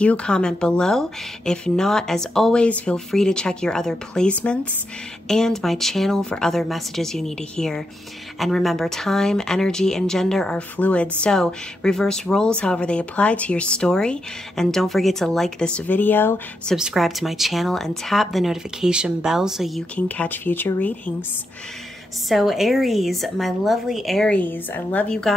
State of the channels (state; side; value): normal; both; correlation 0.84